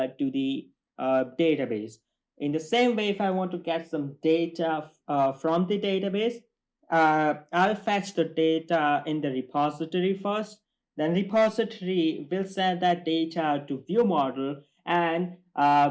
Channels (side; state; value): both; identical; correlation 1.00